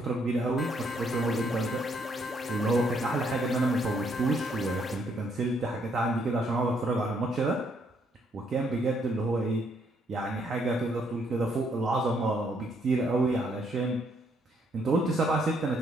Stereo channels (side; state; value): both; normal; correlation 0.71